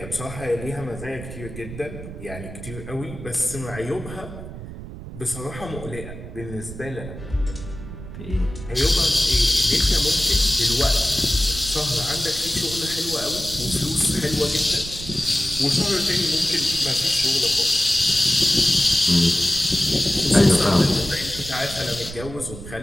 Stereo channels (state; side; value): noise; right; rumble, 11 dB below the sound